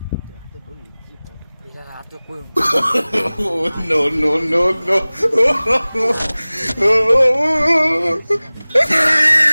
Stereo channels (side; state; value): both; inverted; correlation -0.99